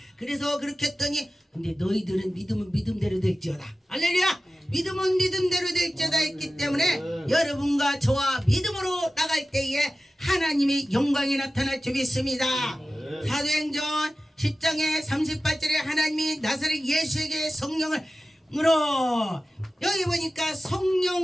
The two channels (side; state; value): both; normal; correlation 0.94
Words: 그래서 그렇게 했더니 근데 너희들은 믿음은 믿음대로 될지어다. 할렐루야. 믿음은 믿음대로 될지어다 했기 때문에 여러분과 저와 믿음으로 나갈 때에 하나님의 영광이 나타날 줄 믿습니다. 사도행전 10장의 38절에 하나님이 나사렛 예수에게 성령을 으로 여기 보니까